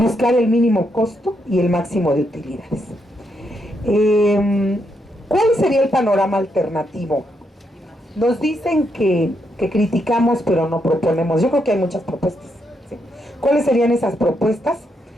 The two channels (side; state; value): both; normal; correlation 0.79